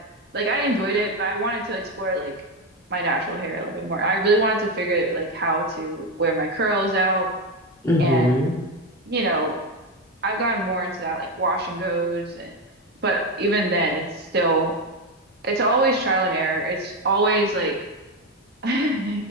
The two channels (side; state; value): both; normal; correlation 0.11